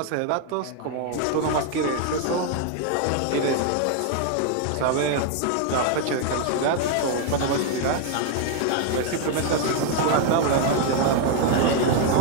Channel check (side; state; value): both; different; correlation 0.00